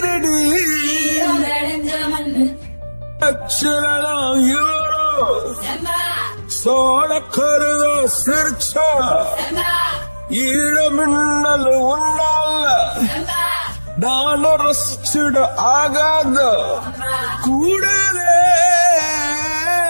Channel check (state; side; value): inverted; both; correlation -1.00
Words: அச்சலாம் யூரோ சோழ கருத சிரிச்சா ஈழமின்னல் உன்னால நான் ரசிச்சுட ஆகாத கூடவே